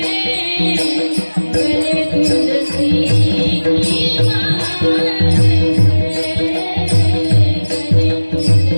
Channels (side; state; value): both; inverted; correlation -1.00